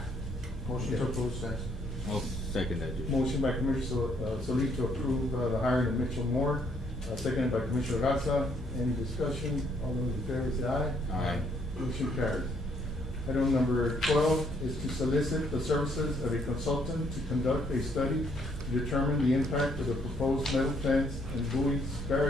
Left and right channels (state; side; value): normal; both; correlation 0.68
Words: Motion to Okay. approve stands. I'll second that, Judge. Motion by Commissioner Solis to approve the hiring of Mitchell Moore, seconded by Commissioner Garza. Any discussion? All those in favor say aye. Aye. Motion carries. Item number 12 is to solicit the services of a consultant to conduct a study to determine the impact of the proposed metal fence and buoys